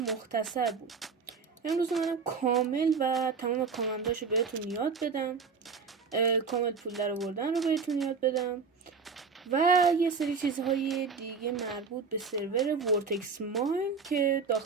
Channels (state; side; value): quieter; left; 5.2 dB